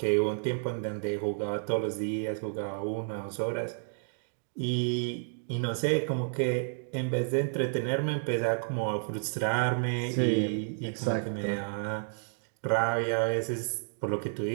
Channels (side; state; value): left; silent; digital silence